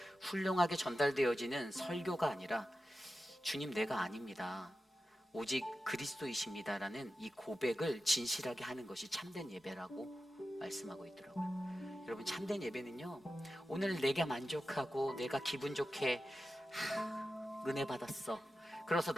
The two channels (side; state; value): both; normal; correlation 0.92